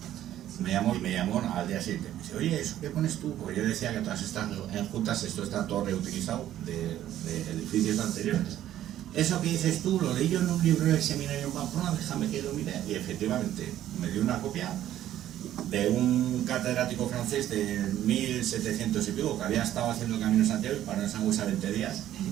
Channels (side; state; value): left; quieter; 12.3 dB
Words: me llamó al día siguiente. Me dice, oye, ¿eso qué pones tú? Pues yo decía que todas estas enjutas, esto está todo reutilizado de edificios anteriores. Eso que dices tú, lo leí yo en un libro del seminario en Pamplona, déjame que lo mire. Y efectivamente, me dio una copia de un catedrático francés de 1700 y pico, que había estado haciendo el Camino de Santiago y paró en Sangüesa 20 días.